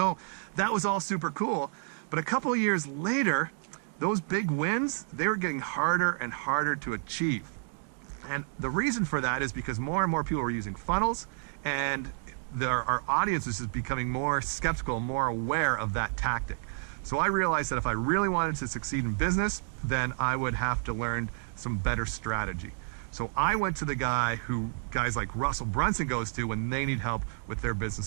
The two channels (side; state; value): left; silent; 56 dB below the other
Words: that was all super cool. But a couple of years later, those big wins, they were getting harder and harder to achieve. And the reason for that is because more and more people were using funnels, and our audience is just becoming more skeptical, more aware of that tactic. So I realized that if I really wanted to succeed in business, then I would have to learn some better strategy. So I went to the guy who guys like Russell Brunson goes to when they need help with their